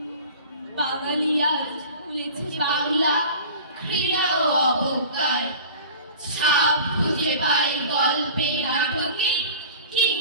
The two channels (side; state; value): both; inverted; correlation -0.40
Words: বাঙালি আজ ভুলেছে বাংলা, ঘৃণা ও অবজ্ঞায়। ছাপ খুঁজে পাই গল্পে, নাটকে